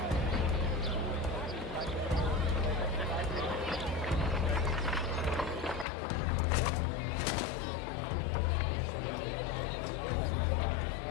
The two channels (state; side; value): drops out; right; at 5.9 s